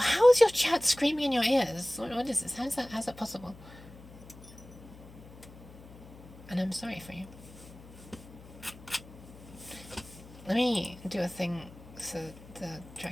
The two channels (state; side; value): noise; left; hum, 19 dB below the sound